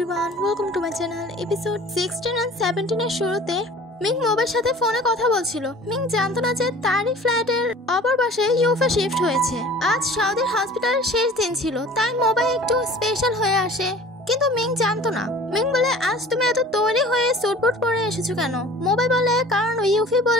welcome to my channel. Episode 16 and 17 এর শুরুতে Ming মোবের সাথে ফোনে কথা বলছিল। মিং জানতো না যে তারই ফ্ল্যাটের অপর পাশে ইউফা শিফট হয়েছে। আজ সৌদির হসপিটালের শেষ দিন ছিল, তাই মোবাইল একটু স্পেশাল হয়ে আসে, কিন্তু মিং জানতো না। মিং বলে, আজ তুমি এত তৈরি হয়ে সুটবুট পরে এসেছো কেন? মোবাইল বলে, কারণ ইউফি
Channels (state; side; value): normal; both; correlation 0.45